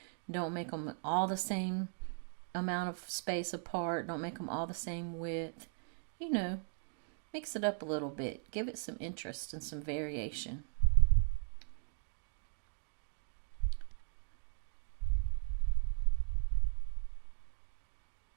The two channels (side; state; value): left; silent; 53 dB below the other